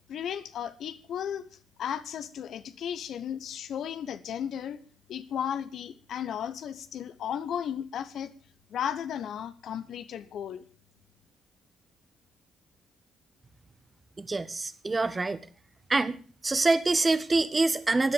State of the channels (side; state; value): both; normal; correlation 0.85